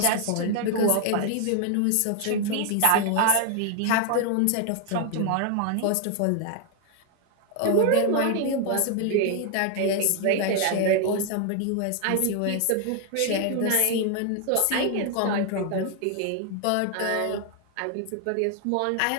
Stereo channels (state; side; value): different; both; correlation 0.00